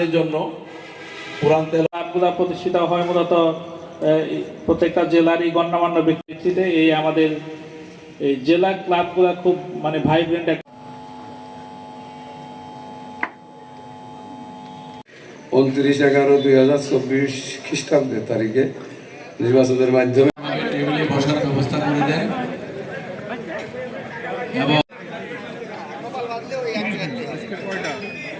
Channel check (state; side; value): identical; both; correlation 1.00